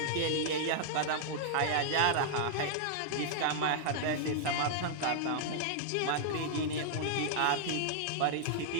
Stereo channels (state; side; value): different; both; correlation -0.01